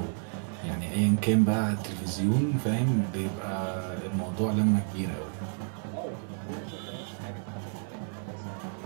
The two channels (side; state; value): left; silent; 58 dB below the other